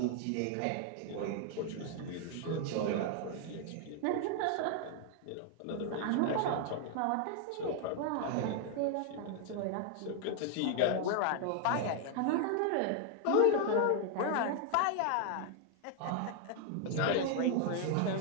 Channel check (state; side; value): different; both; correlation 0.00